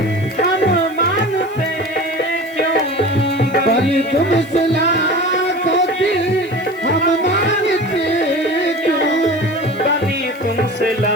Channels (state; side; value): noise; left; hiss, 26 dB below the sound